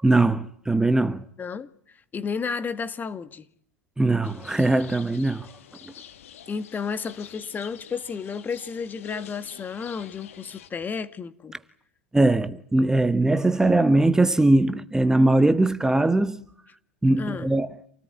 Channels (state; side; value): normal; both; correlation 0.92